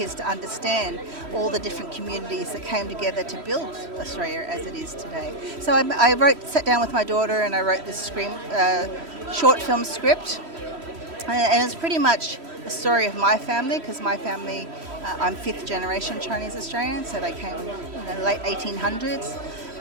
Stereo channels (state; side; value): late; left; 3.1 ms